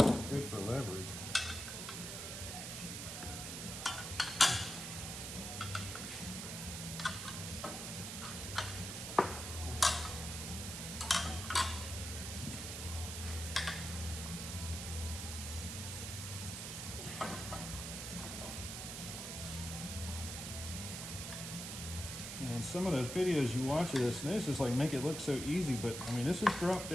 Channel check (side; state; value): right; noise; hiss, 6 dB below the sound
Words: Good for leverage. And some of those videos you watch of this, and this is like make it look so easy, but I mean this is dropped